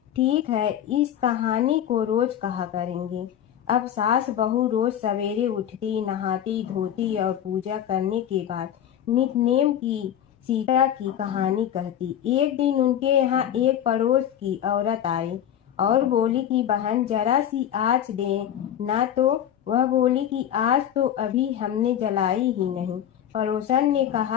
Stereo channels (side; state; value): right; quieter; 10.3 dB